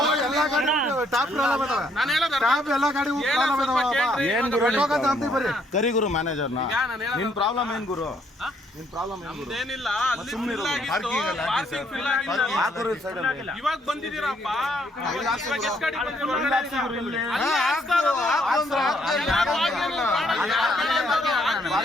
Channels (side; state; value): both; normal; correlation 0.69